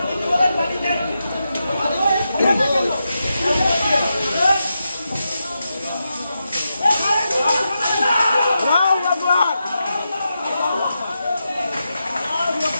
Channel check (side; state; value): both; inverted; correlation -0.87